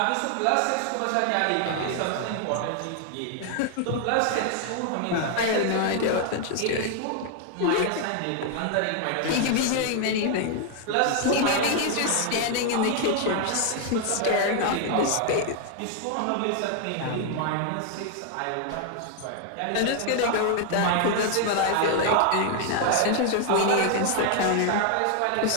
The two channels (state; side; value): different; both; correlation 0.00